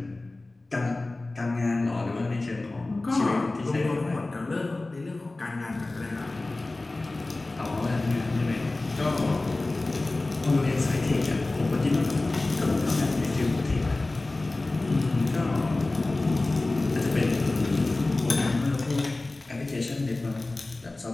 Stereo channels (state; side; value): quieter; right; 3.0 dB